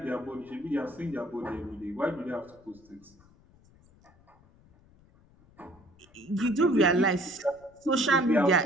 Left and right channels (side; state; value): left; noise; rumble, 28 dB below the sound